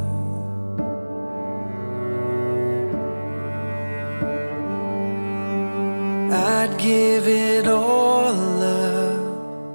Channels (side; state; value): both; inverted; correlation -1.00